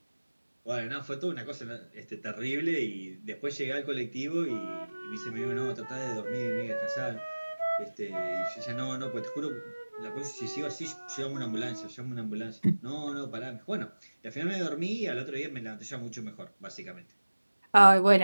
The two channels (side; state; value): both; inverted; correlation -1.00